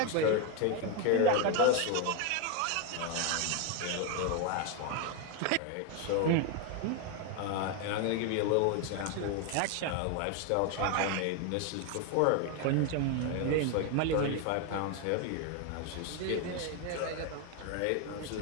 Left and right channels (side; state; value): both; different; correlation 0.01